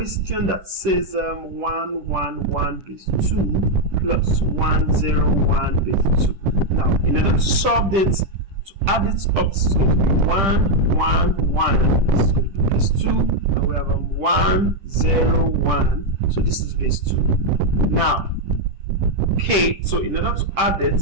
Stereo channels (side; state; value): left; late; 10 ms